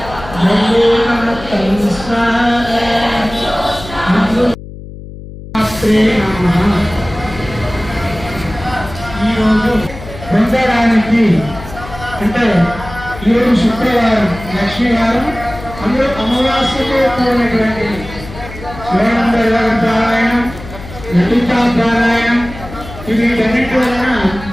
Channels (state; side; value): noise; left; hum, 14 dB below the sound